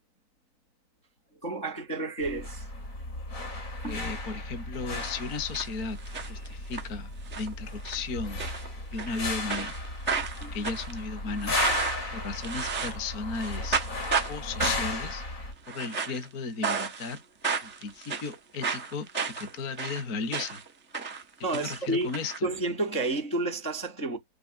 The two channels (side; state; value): right; late; 4.0 ms